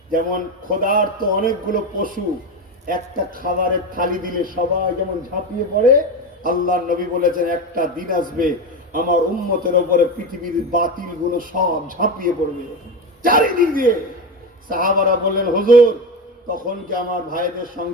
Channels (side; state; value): both; normal; correlation 0.19